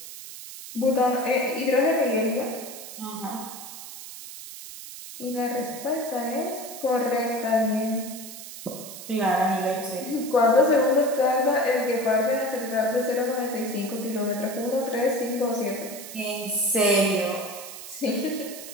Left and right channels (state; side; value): noise; right; hiss, 12 dB below the sound